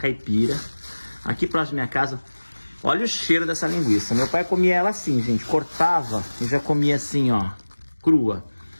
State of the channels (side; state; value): both; inverted; correlation -1.00